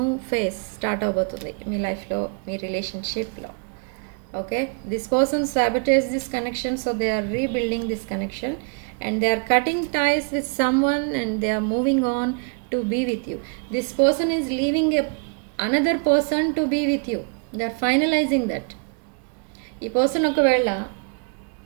phase start అవబోతుంది మీ లైఫ్లో, మీ రిలేషన్షిప్లో. Okay, this person sabotage this connection, so they are rebuilding this connection and they are cutting ties with someone and they are moving on to be with you. This person is leaving another person to be with you. They are finalizing that. ఈ person ఒకవేళ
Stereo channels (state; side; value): quieter; left; 38.3 dB